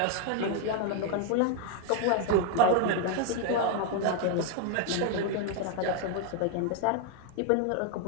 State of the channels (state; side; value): different; both; correlation 0.00